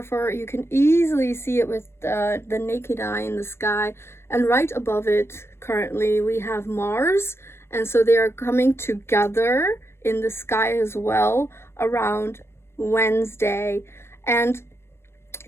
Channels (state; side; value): late; right; 0.12 ms